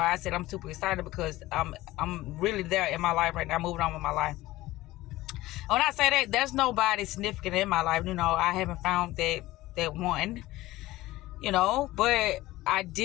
I said I'm super excited, because I'm really there in my life right now, moving on with my life. When I say that, there's nobody significant in my life. I haven't found that one, but I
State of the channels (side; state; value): right; quieter; 17.6 dB